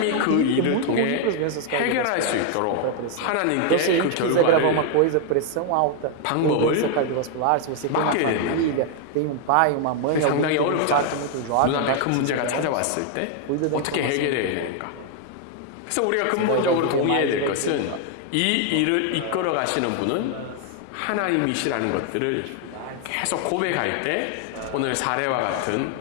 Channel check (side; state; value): both; different; correlation 0.00